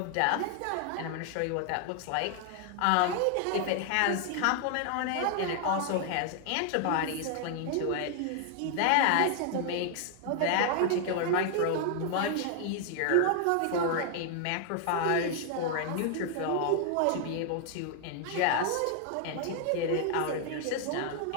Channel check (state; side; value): different; both; correlation 0.00